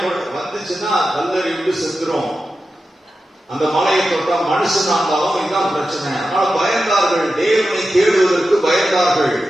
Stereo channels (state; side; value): normal; both; correlation 0.92